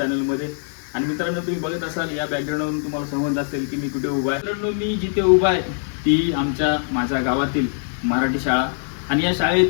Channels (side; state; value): right; silent; digital silence